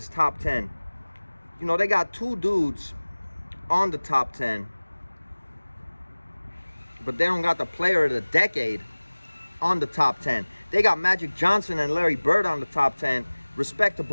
top 10, you know, they got two dudes on the top 10, but they don't got the player of the decade on the top 10. They got Magic Johnson and Larry Bird on the top 10. Respect to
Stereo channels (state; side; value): inverted; both; correlation -1.00